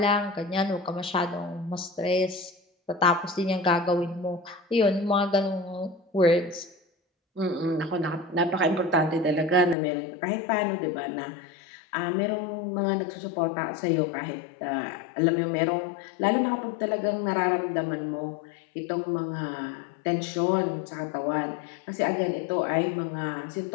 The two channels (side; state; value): right; drops out; at 9.8 s